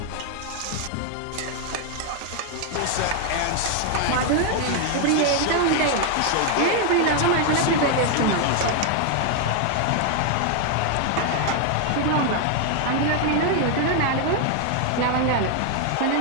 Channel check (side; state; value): both; different; correlation 0.00